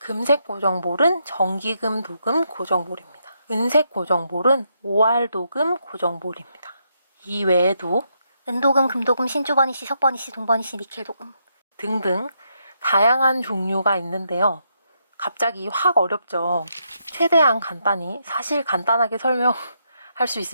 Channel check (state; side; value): inverted; both; correlation -0.79